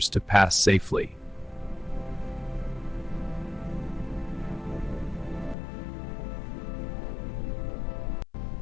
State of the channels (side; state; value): right; drops out; at 5.6 s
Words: to pass safely.